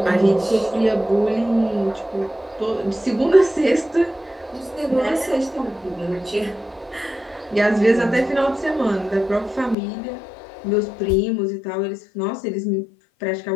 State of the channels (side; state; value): right; drops out; at 9.8 s